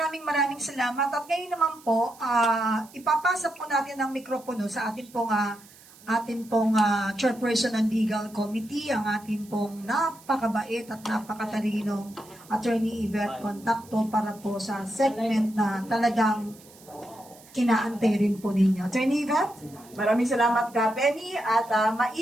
salamat. At ngayon naman po, ipapasa po natin ang mikropono sa atin pong chairperson ng legal committee, ang atin pong napakabait at napakatalinong Attorney Yvette Contacto para po sa segment na talagang inaantay rin po ninyo. Attorney Yvette? Maraming salamat ka, Penny. At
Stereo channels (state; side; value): noise; right; hiss, 23 dB below the sound